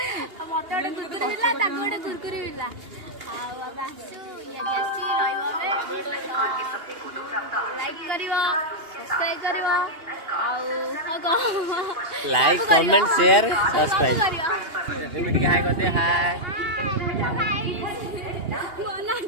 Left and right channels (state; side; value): late; left; 2.8 ms